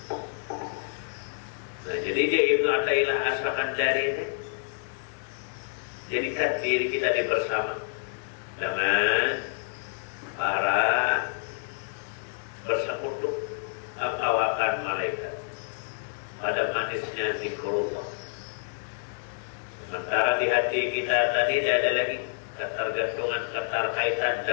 Nah, jadi dia Ibnu Athaillah As-Sakandari ini jadikan diri kita di bersama dengan para bersekutu kawakan malaikat pada manisnya zikrullah. Sementara di hati kita tadi tidak ada lagi ketergantungan, keterkaitan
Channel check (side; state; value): right; silent; digital silence